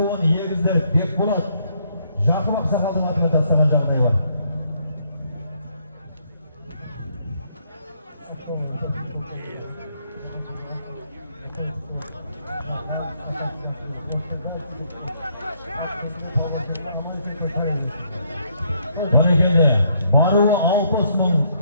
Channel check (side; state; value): both; inverted; correlation -0.70